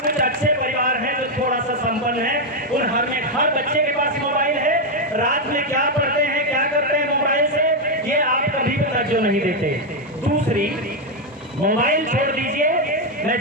अच्छे परिवार हैं जो थोड़ा सा संपन्न है, उन हर बच्चे के पास मोबाइल है। रात में क्या पढ़ते हैं, क्या करते हैं मोबाइल से, ये आप कभी तवज्जो नहीं देते। दूसरी, मोबाइल छोड़ दीजिए, मैं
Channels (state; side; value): normal; both; correlation 0.03